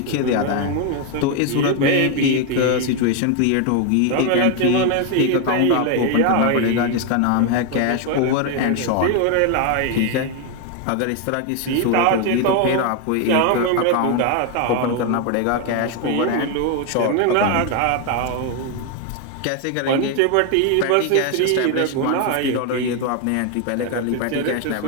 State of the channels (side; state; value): both; different; correlation 0.01